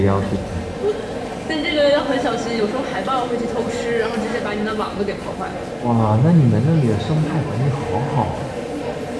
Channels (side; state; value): both; identical; correlation 1.00